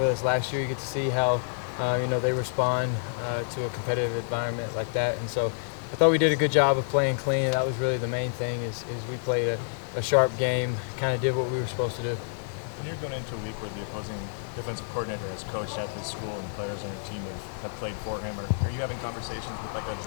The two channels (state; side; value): silent; right; digital silence